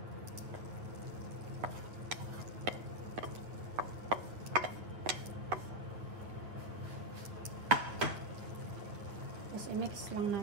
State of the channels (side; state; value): left; late; 9.2 ms